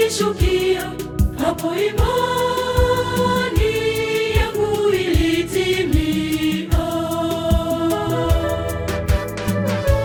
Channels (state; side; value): identical; both; correlation 1.00